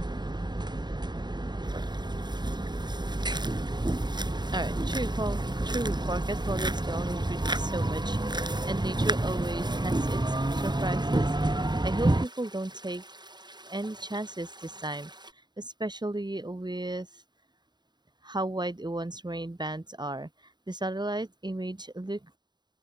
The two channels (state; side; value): late; left; 0.21 ms